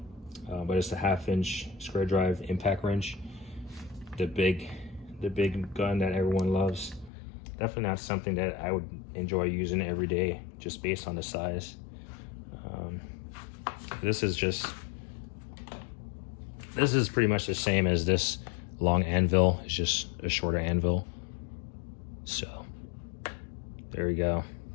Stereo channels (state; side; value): drops out; right; at 7.1 s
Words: but it's a 1/2-inch square drive impact wrench, the big gun that everyone loves. Definitely not something that I would enjoy using every day, just based on the size. This is pretty much the same as this long anvil. It's just a shorter anvil. So there we go.